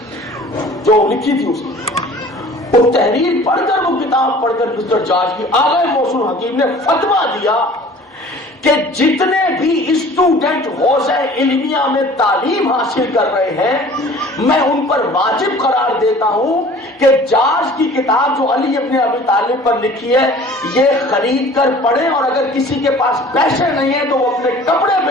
جو لکھی تھی اس کی، وہ تحریر پڑھ کر وہ کتاب پڑھ کر مسٹر جارج کی، آگئے محسن حکیم نے فتویٰ دیا کہ جتنے بھی اسٹوڈنٹ حوزہ علمیہ میں تعلیم حاصل کر رہے ہیں میں ان پر واجب قرار دیتا ہوں کہ جارج کی کتاب جو علی ابن ابی طالب پر لکھی ہے یہ خرید کر پڑھیں، اور اگر کسی کے پاس پیسے نہیں ہیں تو وہ اپنے کپڑے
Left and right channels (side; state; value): both; normal; correlation 0.47